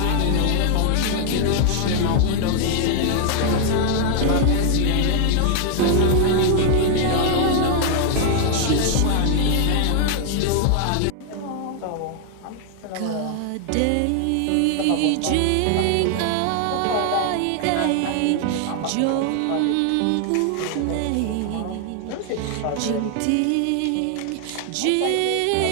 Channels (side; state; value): both; different; correlation 0.00